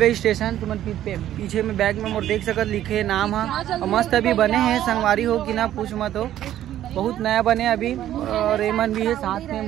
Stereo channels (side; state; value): left; quieter; 12.2 dB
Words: स्टेशन। तुम पीछे में बैग में मोर देख सकत लिखे नाम है, और मस्त अभी बने हैं संगवारी हो कि ना पूछ मत हो, बहुत नया बने अभी। और एमन भी है साथ में